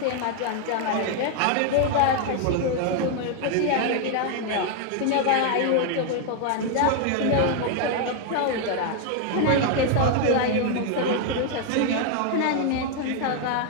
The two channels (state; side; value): different; both; correlation 0.00